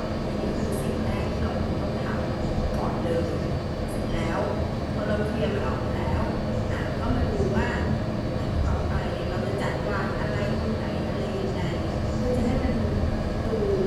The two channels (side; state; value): both; identical; correlation 1.00